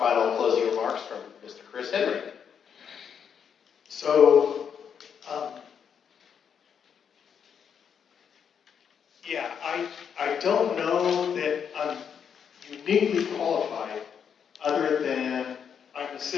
closing remarks from Mr. Chris Henry. So, I don't know that I'm uniquely qualified other than I'm a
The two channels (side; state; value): right; quieter; 7.5 dB